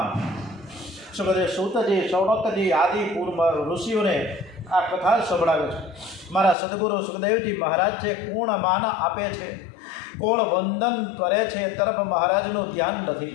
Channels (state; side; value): drops out; right; at 6.6 s